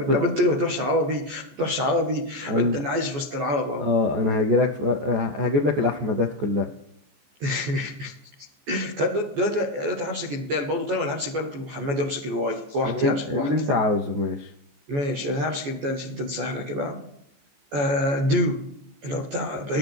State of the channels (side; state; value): left; late; 14 ms